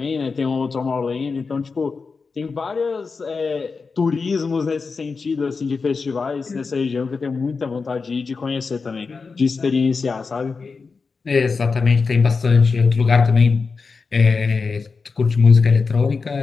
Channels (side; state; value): right; quieter; 4.7 dB